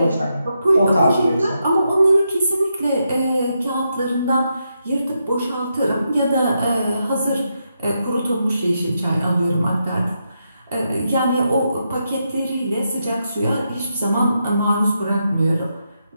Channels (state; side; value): inverted; both; correlation -0.83